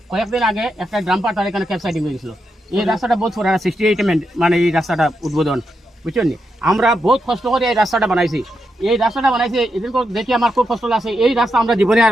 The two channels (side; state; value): both; normal; correlation 0.84